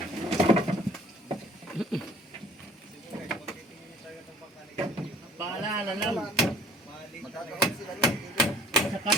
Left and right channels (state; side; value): normal; both; correlation 0.53